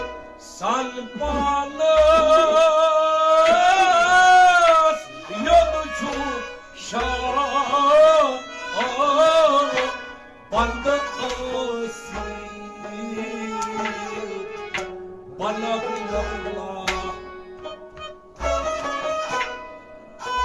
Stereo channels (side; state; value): both; identical; correlation 1.00